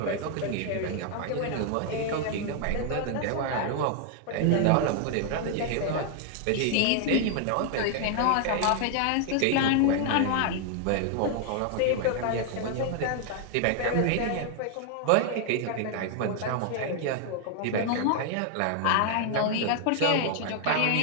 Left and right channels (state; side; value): different; both; correlation 0.00